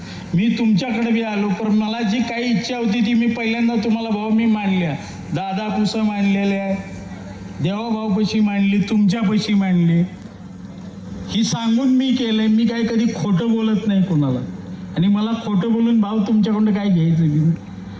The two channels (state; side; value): identical; both; correlation 1.00